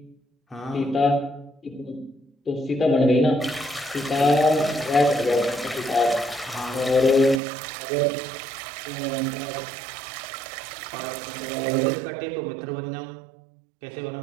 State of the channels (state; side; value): drops out; left; at 7.4 s